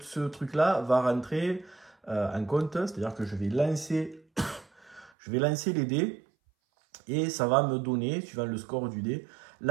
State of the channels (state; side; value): drops out; left; at 5.1 s